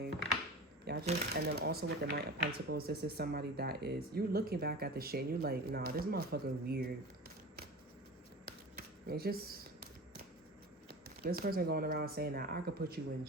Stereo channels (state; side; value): normal; both; correlation 0.33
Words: Y'all just, and then also with the Knight of Pentacles, this is somebody that is, you're looking back at the shit and you're like, nah, this motherfucker weird. It's just, this person going around saying that I could put you in